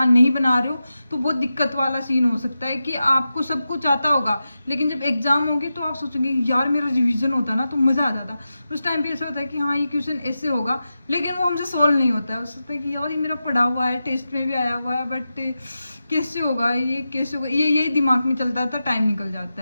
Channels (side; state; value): both; inverted; correlation -0.91